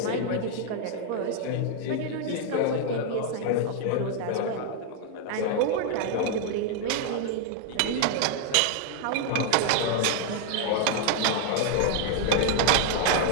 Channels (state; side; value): different; both; correlation 0.00